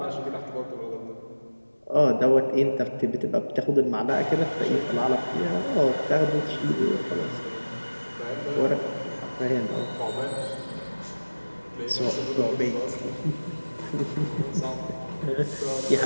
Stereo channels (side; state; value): both; inverted; correlation -1.00